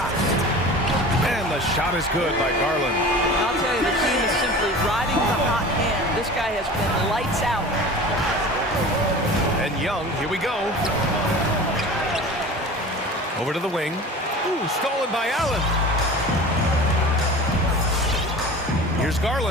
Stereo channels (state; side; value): normal; both; correlation 0.38